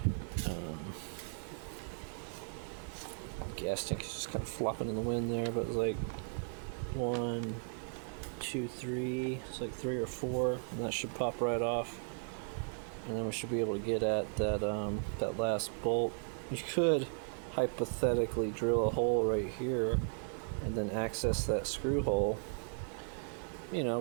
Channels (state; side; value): silent; left; 54 dB below the other